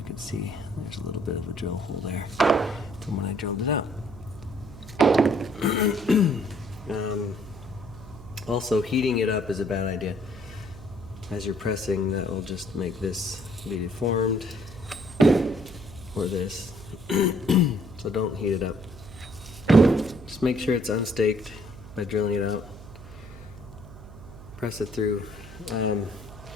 can see there's a little bit of a drill hole there from when I drilled it out. Also, heating it up is a bad idea. As you're pressing, that will just make this be deformed, or this. So don't heat it up. Just make sure it's unstaked by drilling it out. Press it through.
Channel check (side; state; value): right; noise; hum, 16 dB below the sound